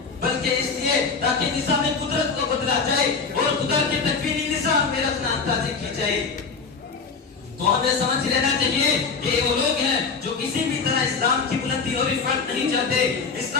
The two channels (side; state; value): right; quieter; 5.0 dB